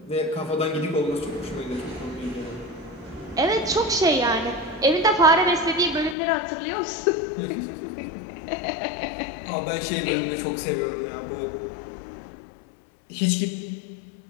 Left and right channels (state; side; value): drops out; right; at 6.2 s